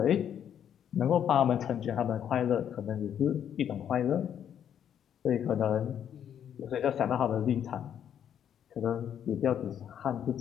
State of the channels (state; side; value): quieter; right; 9.3 dB